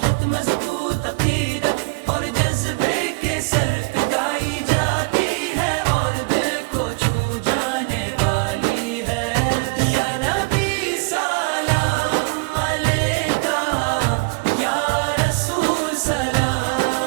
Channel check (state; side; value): quieter; left; 29.8 dB